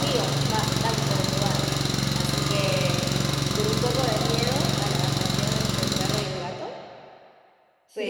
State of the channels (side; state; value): both; identical; correlation 1.00